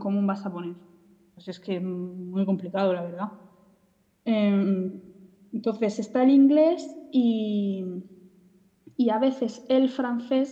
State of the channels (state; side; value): identical; both; correlation 1.00